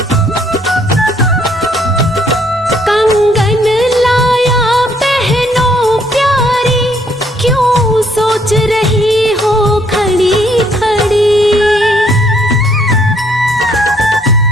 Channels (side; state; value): both; normal; correlation 0.67